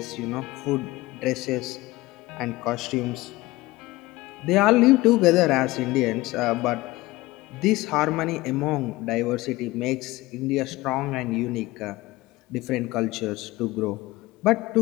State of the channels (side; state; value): right; quieter; 19.7 dB